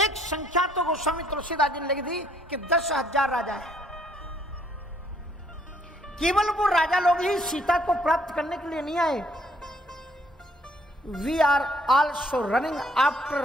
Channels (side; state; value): both; normal; correlation 0.65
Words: संख्या तो गोस्वामी तुलसीदास जी ने लिख दी कि 10,000 राजा है। केवल वो राजा लोग ही सीता को प्राप्त करने के लिए नहीं आए। We are also running after